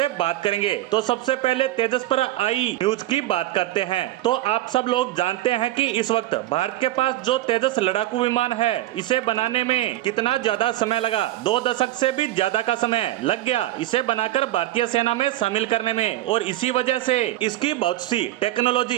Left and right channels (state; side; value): quieter; left; 15.5 dB